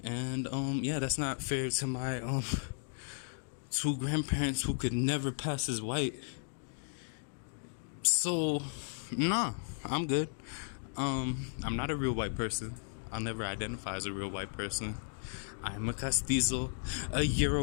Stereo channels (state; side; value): silent; right; digital silence